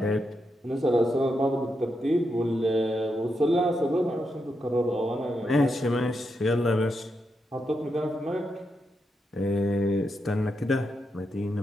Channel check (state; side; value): normal; both; correlation 0.84